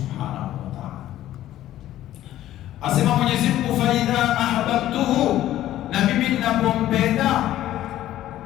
wa Ta'ala. Asema Mwenyezi Mungu, fa idha ahbabtuhu, na mimi ninapompenda,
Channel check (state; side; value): quieter; right; 13.4 dB